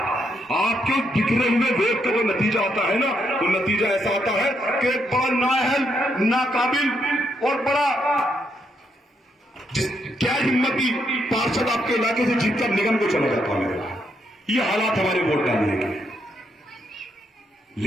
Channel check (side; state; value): both; normal; correlation 0.78